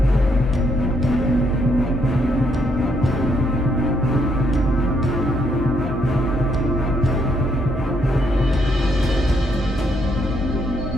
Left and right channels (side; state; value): both; normal; correlation 0.73